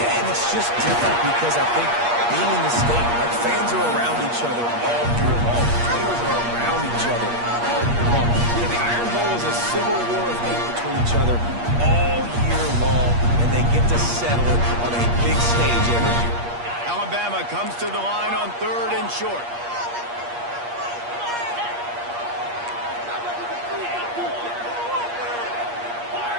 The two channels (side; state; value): left; late; 8.5 ms